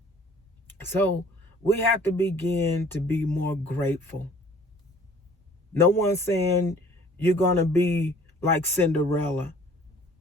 So we have to begin to be more grateful. No one's saying you're going to be like Cinderella,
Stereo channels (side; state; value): both; normal; correlation 0.53